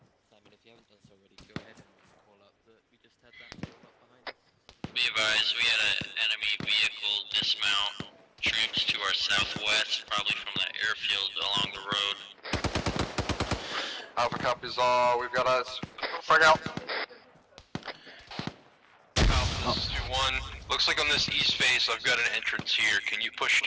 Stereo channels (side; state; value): both; identical; correlation 1.00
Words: Simon, if you haven't done so already, go ahead and call up that we just had that call up behind us. Be advised, we had an enemy vehicle dismount troops to our southwest, probably from that airfield along the road. Alpha copies all. We've got eyes. Frag out. Alpha, this is 2-1. Looks like on this east face, I've got an entrance here. Can you push